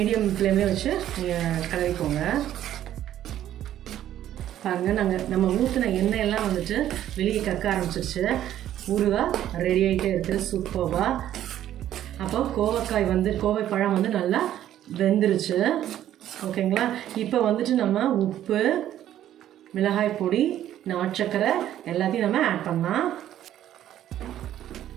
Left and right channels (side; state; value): left; quieter; 11.9 dB